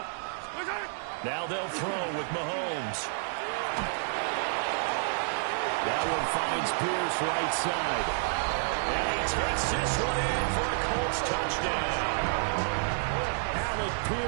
Now they'll throw with Mahomes. That one finds Pierce right side. And he takes this one in for a Colts touchdown. Alec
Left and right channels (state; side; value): silent; left; 58 dB below the other